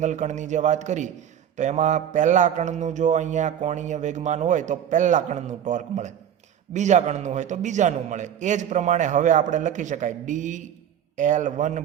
કણની જે વાત કરી તો એમાં પહેલા કણનું જો અહીંયા કોણીય વેગમાન હોય તો પહેલા કણનું ટોર્ક મળે, બીજા કણનું હોય તો બીજાનું મળે. એ જ પ્રમાણે હવે આપણે લખી શકાય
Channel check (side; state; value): left; quieter; 9.5 dB